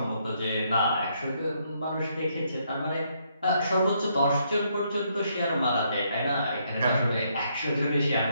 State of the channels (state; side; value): inverted; both; correlation -0.73